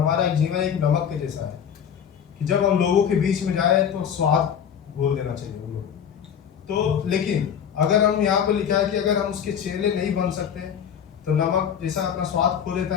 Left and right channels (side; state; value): right; quieter; 8.3 dB